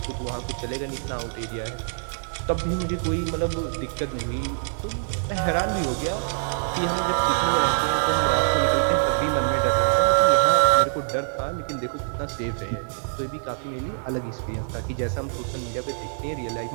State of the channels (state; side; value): silent; left; digital silence